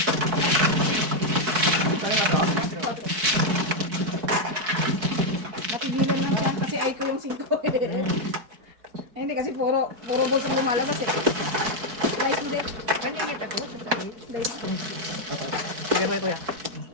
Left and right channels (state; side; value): late; left; 4.6 ms